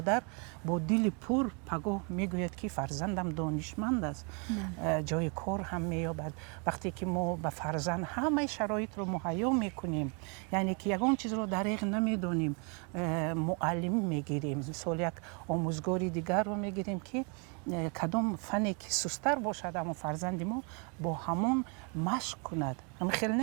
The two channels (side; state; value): left; quieter; 35.3 dB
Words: با دل پر پگاه می گوید که فرزندم دانشمند است، جای کار هم می یابد. وقتی که ما به فرزند همه شرایط رو مهیا می کنیم، یعنی که یگان چیز رو دریغ نمی دانیم، معلم می گیریم، مثال یک آموزگاری دیگر رو می گیریم که کدام فنی که سستر باشد اما فرزند ما با همون مشق کند. همین خیلی